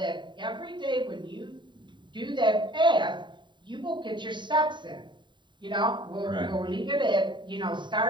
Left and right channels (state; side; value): late; left; 0.23 ms